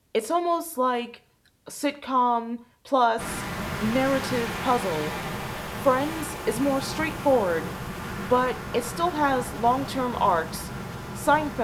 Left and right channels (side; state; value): both; identical; correlation 1.00